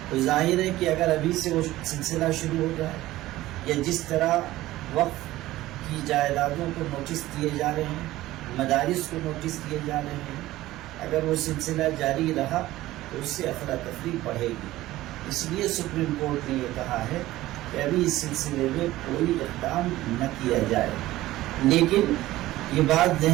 تو ظاہر ہے کہ اگر ابھی سے وہ سلسلہ شروع ہو جائے یا جس طرح وقف کی جائیدادوں کو نوٹس دیے جا رہے ہیں، مدارس کو نوٹس دیے جا رہے ہیں، اگر وہ سلسلہ جاری رہا تو اس سے افراتفری بڑھے گی۔ اس لیے سپریم کورٹ نے یہ کہا ہے کہ ابھی اس سلسلے میں کوئی اقدام نہ کیا جائے، لیکن یہ بات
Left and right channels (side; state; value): left; quieter; 16.3 dB